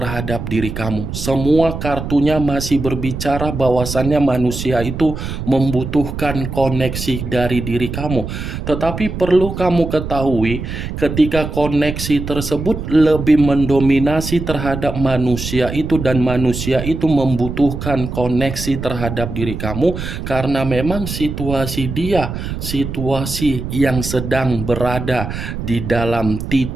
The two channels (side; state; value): right; noise; rumble, 6 dB below the sound